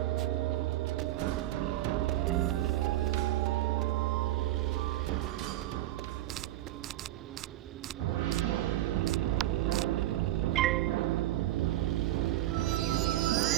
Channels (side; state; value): left; quieter; 14.8 dB